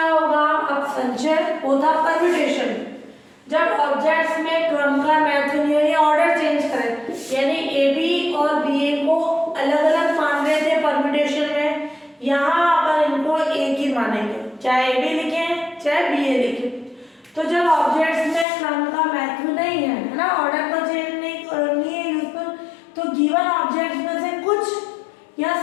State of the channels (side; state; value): right; drops out; at 18.4 s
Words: होगा, अब संचय होता परम्यूटेशन, जब ऑब्जेक्ट्स में क्रम का मैथ या ऑर्डर चेंज करें, यानी ए बी और बी ए को अलग अलग मान रहे थे परम्यूटेशन में, यहाँ अपन इनको एक ही मानेंगे, चाहे ए बी लिखें चाहे बी ए लिखें। तो जब ऑब्जेक्ट्स में क्रम का मैथ नहीं है ना, ऑर्डर को चेंज नहीं है यूजफुल, तो गिवन ऑब्जेक्ट्स में से कुछ या